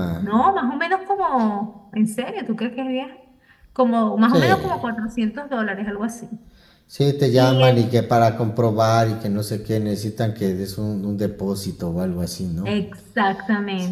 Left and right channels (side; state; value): both; identical; correlation 1.00